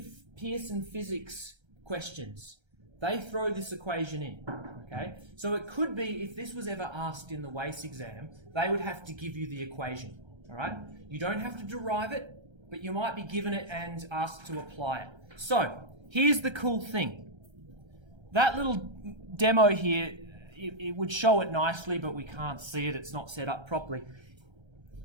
Pearson physics questions, they throw this equation in. Okay. So it could be, if this was ever asked in the WACE exam, they would have to give you the equation. All right. You don't have to derive it, but you might be given it and asked to apply it. So here's the cool thing. That little demo here, it would show it nicely, but we can't see it. It's not set up properly.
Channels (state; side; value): late; left; 1.3 ms